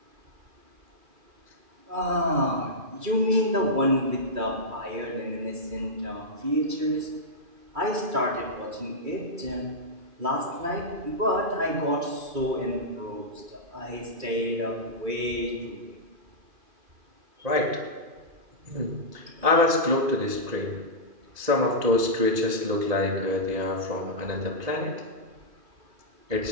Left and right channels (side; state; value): left; late; 2.5 ms